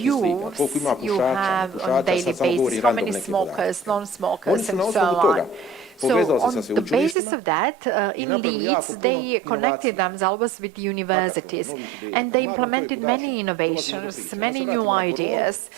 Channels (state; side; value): drops out; left; at 7.2 s